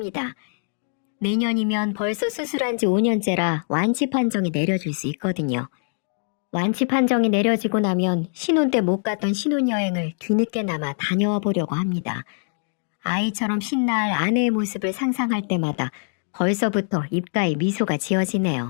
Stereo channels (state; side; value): silent; right; 63 dB below the other